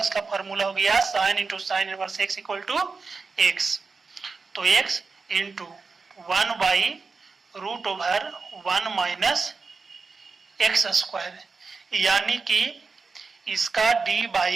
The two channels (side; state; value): left; quieter; 4.5 dB